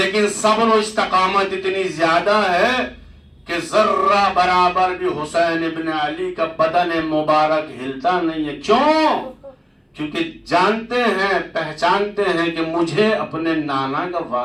صبر و استقامت اتنی زیادہ ہے کہ ذرہ برابر بھی حسین ابن علی کا بدن مبارک ہلتا نہیں ہے. کیوں؟ کیونکہ جانتے ہیں، پہچانتے ہیں کہ مجھے اپنے نانا کا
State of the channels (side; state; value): both; identical; correlation 1.00